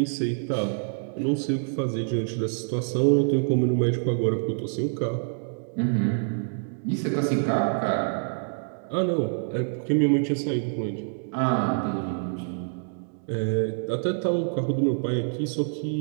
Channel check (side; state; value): left; silent; digital silence